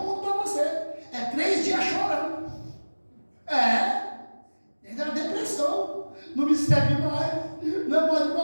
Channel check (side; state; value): both; inverted; correlation -1.00